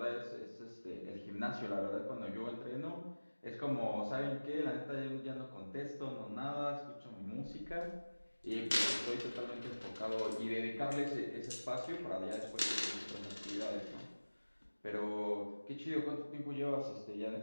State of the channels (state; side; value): inverted; both; correlation -1.00